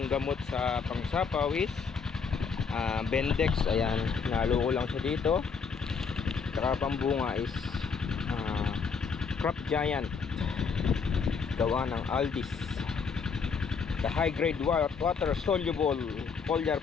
gamot sa pangsapaw is Bendex. Ayan, nalo ko lang siya dito. Saka pambunga is Crop Giant, gawa ng Aldis. The high grade water soluble foliar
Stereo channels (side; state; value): right; quieter; 5.6 dB